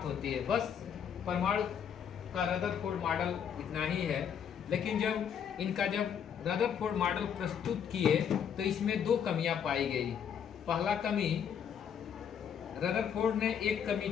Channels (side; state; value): right; quieter; 8.1 dB